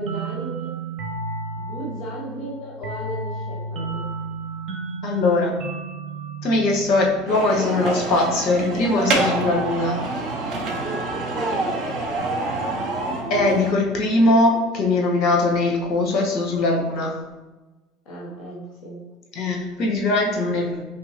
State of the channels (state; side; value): normal; both; correlation 0.40